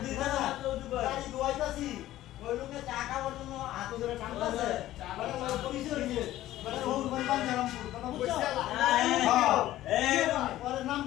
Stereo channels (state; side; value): quieter; right; 14.5 dB